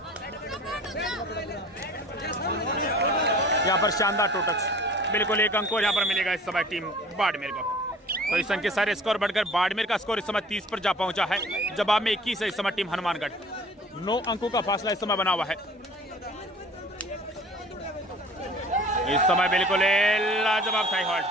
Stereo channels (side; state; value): both; normal; correlation 0.46